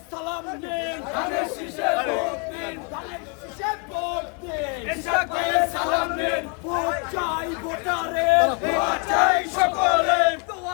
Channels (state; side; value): quieter; right; 36.7 dB